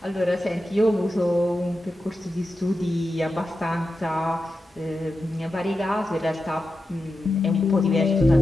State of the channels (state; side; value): normal; both; correlation 0.90